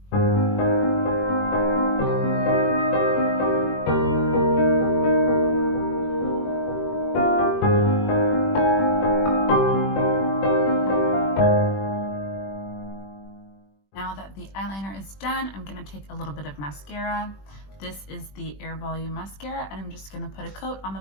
The eyeliner is done. I'm gonna take a little bit of mascara. This is the Air Volume mascara, and I'm just gonna put a coat on the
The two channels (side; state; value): right; late; 20 ms